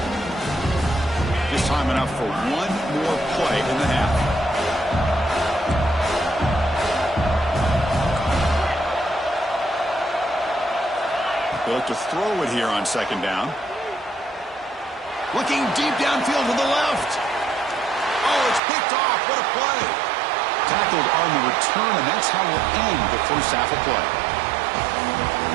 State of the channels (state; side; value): drops out; left; at 18.6 s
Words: Just time enough for one more play in the half. They look to throw it here on second down. Looking deep downfield to the left. Oh, it's picked off. What a play. Tackled on the return, and that's how we'll end the first half of play.